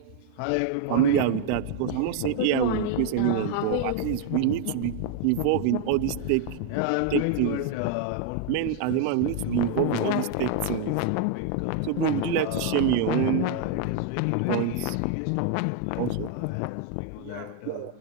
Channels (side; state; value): both; different; correlation 0.01